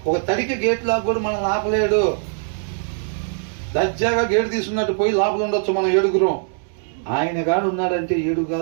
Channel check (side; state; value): left; silent; digital silence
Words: ఒక తడికి గేట్ లాగా కూడా మనం ఆపలేడు. దర్జాగా గేటు తీసుకున్నట్టు పోయి లోపల ఉండొచ్చు మనం ఏడుగురం. ఆయన కాడు ఉన్నాడంటే ఏడు